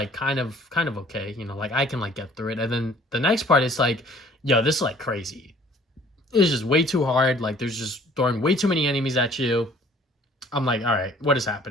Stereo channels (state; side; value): normal; both; correlation 0.55